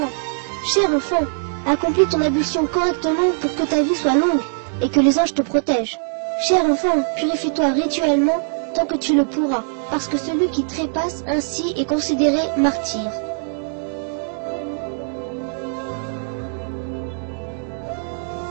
Cher enfant, accomplis ton ablution correctement pour que ta vie soit longue et que les anges te protègent. Cher enfant, purifie-toi rituellement tant que tu le pourras, parce que celui qui trépasse ainsi est considéré martyr. »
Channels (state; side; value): silent; left; digital silence